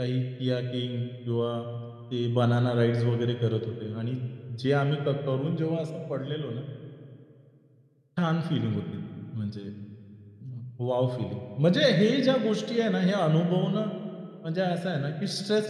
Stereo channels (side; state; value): both; identical; correlation 1.00